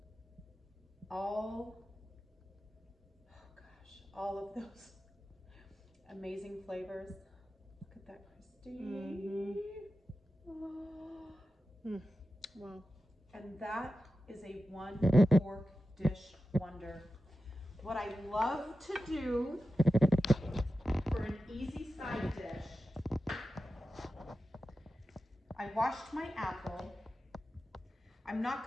all of those amazing flavors. Look at that, Christy. Oh. Wow. And that is a one pork dish wonder. What I love to do for an easy side dish, I washed my apple. I'm not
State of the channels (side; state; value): both; normal; correlation 0.93